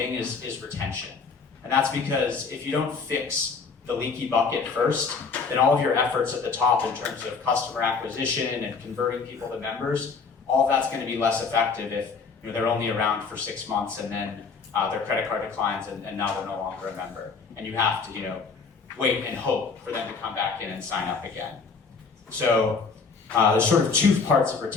is retention. And that's because if you don't fix the leaky bucket first, then all of your efforts at the top in terms of customer acquisition and converting people to members, all of that's going to be less effective if they're only around for 6 months and then their credit card declines and now they're no longer a member. And you have to wait and hope for them to come back in and sign up again. So there's sort of 2 parts of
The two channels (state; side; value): quieter; right; 5.0 dB